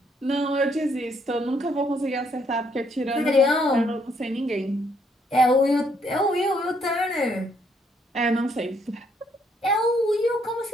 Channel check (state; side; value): normal; both; correlation 0.70